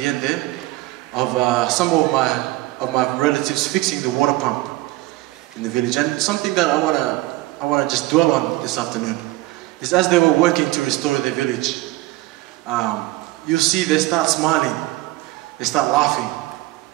end there of some of my relatives fixing the water pump in the village. And something that I wanna just dwell on this afternoon is as they were working to restore their village, you see they start smiling, they start laughing,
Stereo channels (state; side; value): quieter; left; 18.6 dB